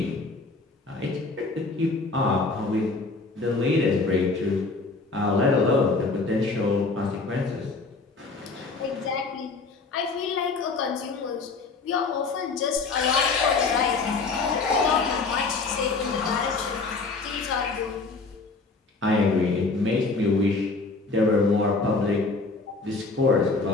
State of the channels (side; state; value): right; quieter; 3.9 dB